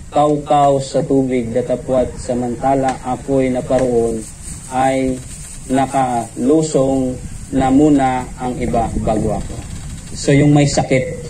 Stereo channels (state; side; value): identical; both; correlation 1.00